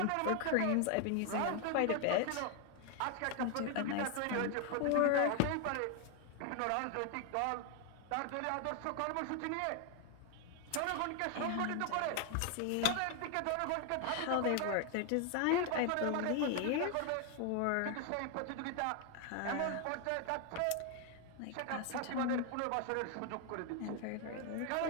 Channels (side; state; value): both; different; correlation 0.01